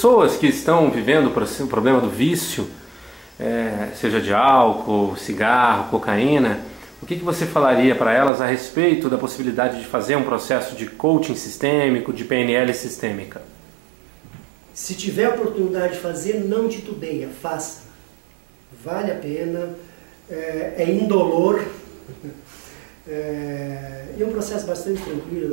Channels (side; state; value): left; drops out; at 8.3 s